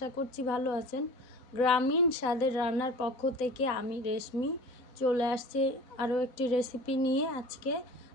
করছি ভালো আছেন। গ্রামীণ স্বাদের রান্নার পক্ষ থেকে আমি রেশমি চলে আসছি আরও একটি রেসিপি নিয়ে।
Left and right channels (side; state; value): right; late; 4.0 ms